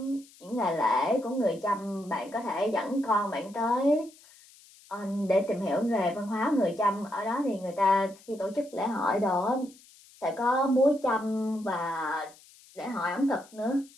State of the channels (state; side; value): noise; left; hiss, 25 dB below the sound